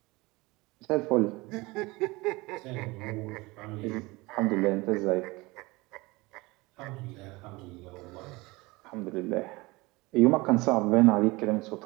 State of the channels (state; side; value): quieter; left; 22.9 dB